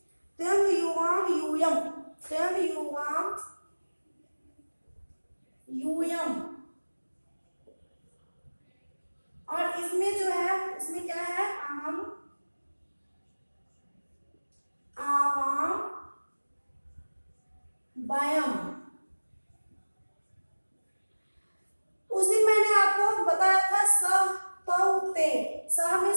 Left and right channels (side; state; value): both; inverted; correlation -1.00